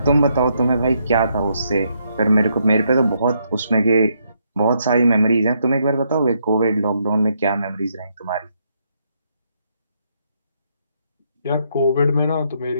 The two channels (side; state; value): both; inverted; correlation -0.75